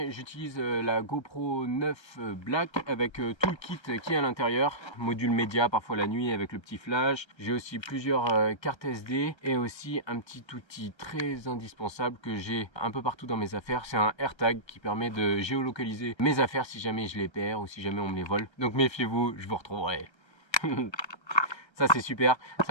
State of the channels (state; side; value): late; right; 1.3 ms